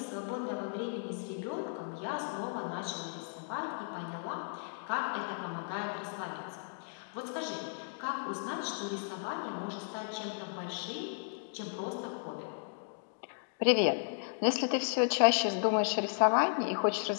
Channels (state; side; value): silent; right; digital silence